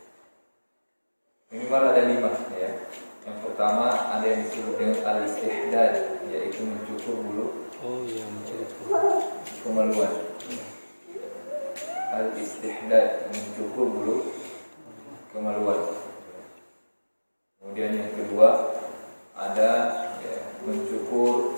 Minimal ada 5 ya. Yang pertama ada yang disebut dengan al-istihdad, yaitu mencukur bulu. Oh iya, mencukur kemaluan. Al-istihdad, mencukur bulu kemaluan. Kemudian yang kedua ada mencukur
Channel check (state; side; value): inverted; both; correlation -1.00